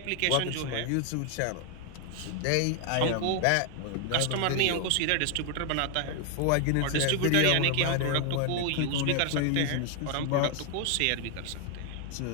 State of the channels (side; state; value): both; different; correlation 0.00